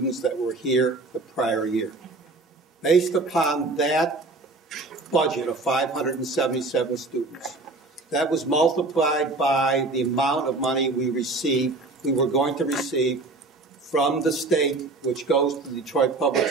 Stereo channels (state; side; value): quieter; left; 3.3 dB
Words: that were here the prior year. Based upon that budget of 577 students, that was multiplied by the amount of money we were going to receive from the state, which goes to the Detroit Public